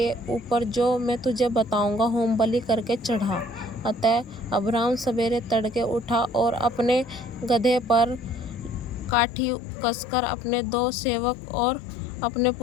ऊपर जो मैं तुझे बताऊंगा होम बलि करके चढ़ा। अतः अब्राम सवेरे तड़के उठा और अपने गधे पर काठी कसकर अपने 2 सेवक और अपने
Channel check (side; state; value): right; drops out; at 9.2 s